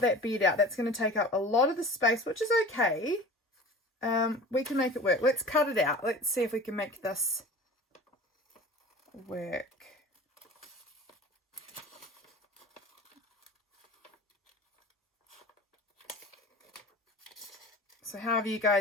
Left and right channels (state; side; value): normal; both; correlation 0.39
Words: bed out, that's going to take up a lot of the space, which is okay. We can make it work. Let's cut it out. Let's see if we can make this work. So how have you